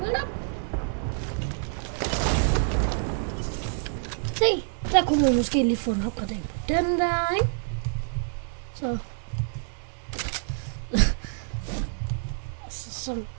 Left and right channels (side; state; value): left; silent; digital silence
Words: op. Se, der kunne man måske lige få en opgradering på den der, ikke? Så.